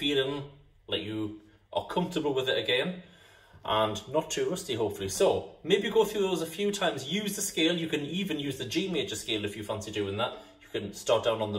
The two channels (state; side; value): identical; both; correlation 1.00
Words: like you are comfortable with it again, and not too rusty hopefully. So maybe go through those a few times, use the scale, you can even use the G major scale if you fancy doing that. You can start down on the